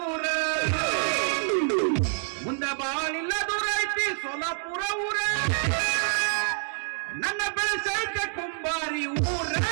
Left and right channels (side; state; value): left; silent; 60 dB below the other